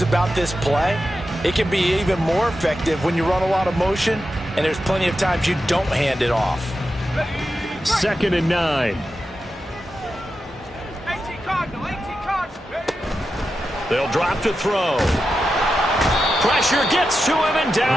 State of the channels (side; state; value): both; normal; correlation 0.90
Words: about this play, it can be even more effective when you run a lot of motion, and there's plenty of times you don't hand it off. 2nd and 9. They'll drop to throw. Pressure gets to him, and